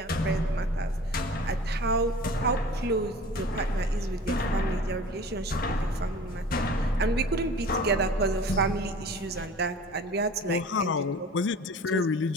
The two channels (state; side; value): normal; both; correlation 0.42